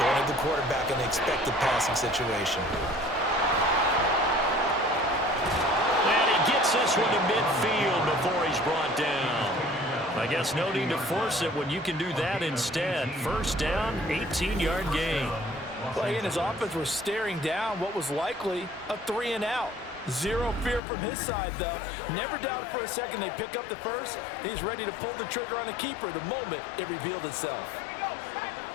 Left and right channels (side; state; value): right; drops out; at 20.8 s